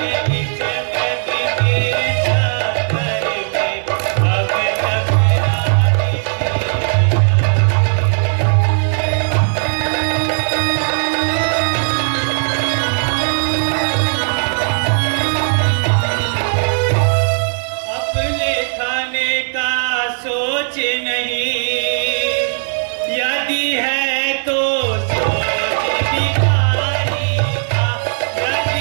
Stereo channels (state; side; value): silent; left; digital silence